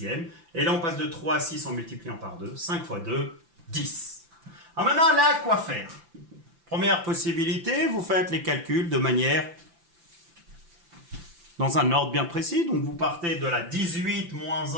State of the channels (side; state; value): left; late; 5.9 ms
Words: Et là, on passe de 3 à 6 en multipliant par 2. 5 fois 2, 10. Alors maintenant, là, quoi faire? Première possibilité, vous faites les calculs de manière dans un ordre bien précis. Donc, vous partez de la 18 moins